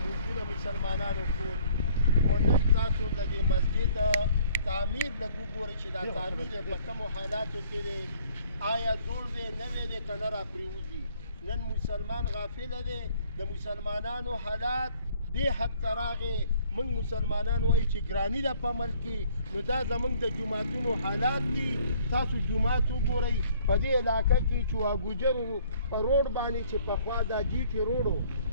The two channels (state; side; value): inverted; both; correlation -0.59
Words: موږ مسلمانانو ټول او نن تاسو د دې مسجد تعمیر لږ وګورئ چې دا تعمیر په کومو حالاتو کې دی، آیا جوړ دی نوی دی که نه راپرېوځي. نن مسلمان غافله دی، د مسلمانانو حالات دې حد ته راغې. موږ مسلمانان وایو چې ګراني ده په ملک کې، نو دا زموږ د جوماتونو حالات دي. تاسو جومات وګورئ په دې علاقه کې چواګوجرو په روډ باندې چې پخوا دا جي ټي روډ